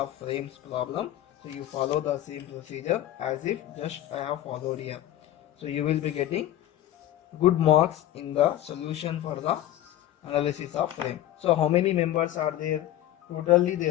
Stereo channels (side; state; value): right; quieter; 13.1 dB